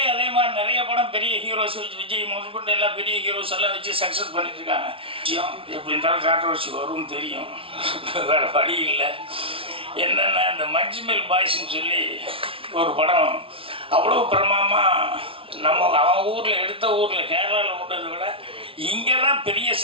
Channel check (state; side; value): late; left; 0.26 ms